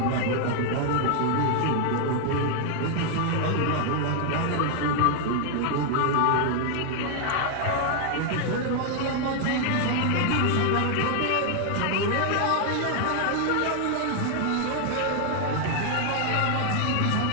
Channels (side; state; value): both; different; correlation 0.00